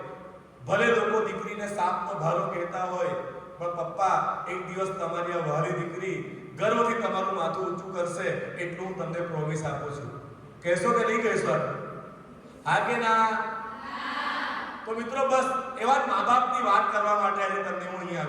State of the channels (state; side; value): identical; both; correlation 1.00